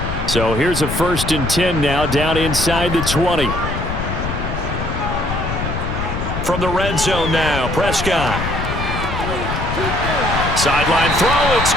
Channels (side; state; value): left; noise; rumble, 5 dB below the sound